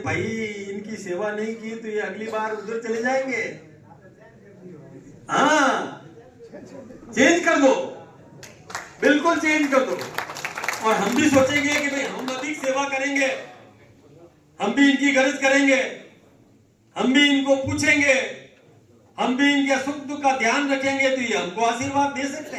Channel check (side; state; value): both; identical; correlation 1.00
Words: भाई इनकी सेवा नहीं की तो ये अगली बार उधर चले जाएंगे। हाँ, चेंज कर दो, बिल्कुल चेंज कर दो। और हम भी सोचेंगे कि भाई हम अधिक सेवा करेंगे, हम भी इनकी गरज करेंगे, हम भी इनको पूछेंगे, हम भी इनके सुख दुख का ध्यान रखेंगे, तो ये हमको आशीर्वाद दे सकते